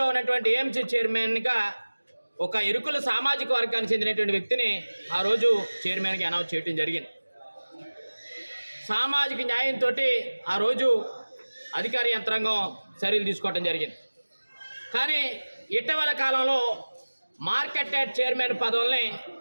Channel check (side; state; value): both; inverted; correlation -1.00